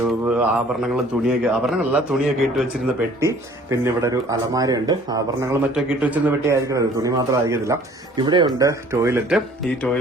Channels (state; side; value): normal; both; correlation 0.53